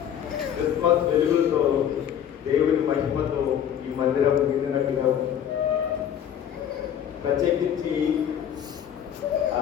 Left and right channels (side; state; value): right; quieter; 9.5 dB